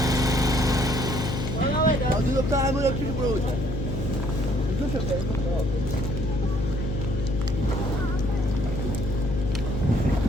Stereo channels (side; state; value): left; noise; hum, 3 dB below the sound